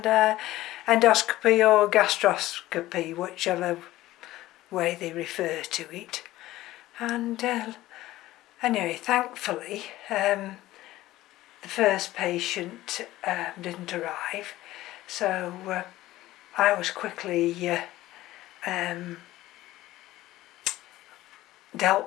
endoscopy or gastroscopy, whichever way they refer to it. And anyway, thankfully the first patient didn't arrive, so I was quickly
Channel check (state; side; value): quieter; right; 16.2 dB